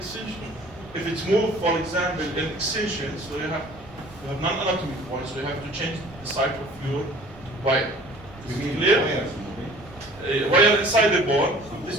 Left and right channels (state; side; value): noise; right; rumble, 21 dB below the sound